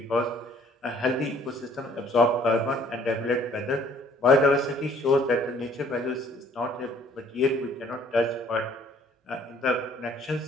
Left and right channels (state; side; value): normal; both; correlation 0.58